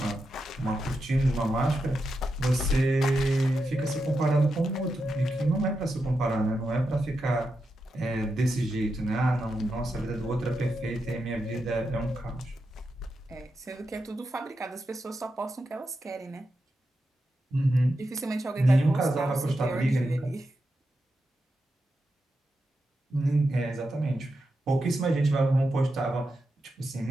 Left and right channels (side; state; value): both; normal; correlation 0.87